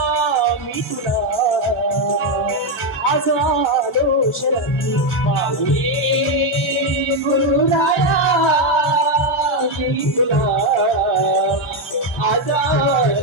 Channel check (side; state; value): both; normal; correlation 0.05